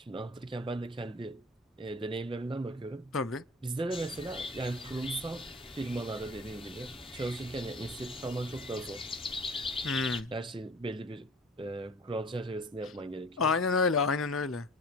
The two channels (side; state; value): both; normal; correlation 0.44